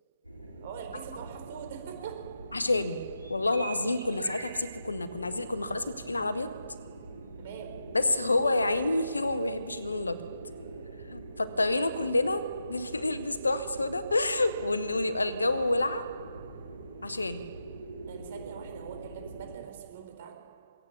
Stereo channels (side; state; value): both; inverted; correlation -0.87